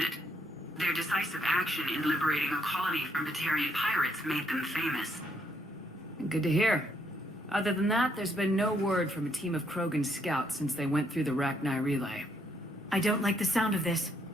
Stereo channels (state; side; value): normal; both; correlation 0.73